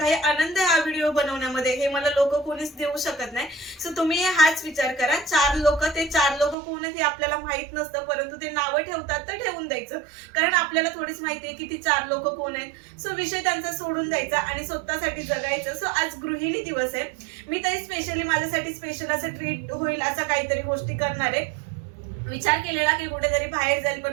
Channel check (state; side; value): drops out; left; at 6.6 s